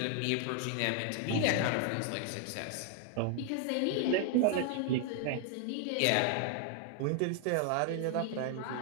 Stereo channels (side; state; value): both; different; correlation 0.00